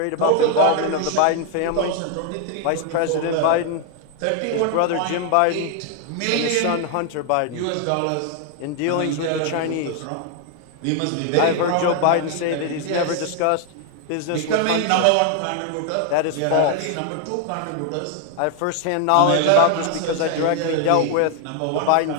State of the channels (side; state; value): both; different; correlation 0.00